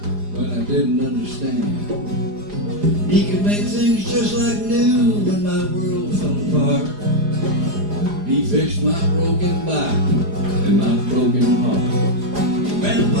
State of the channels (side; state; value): left; late; 4.9 ms